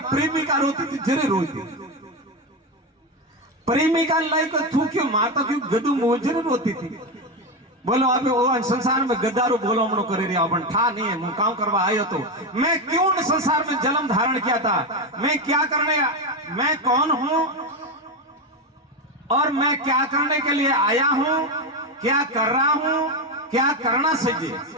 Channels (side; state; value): both; normal; correlation 0.13